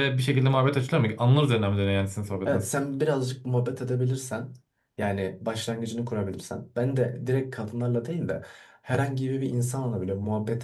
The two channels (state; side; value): identical; both; correlation 1.00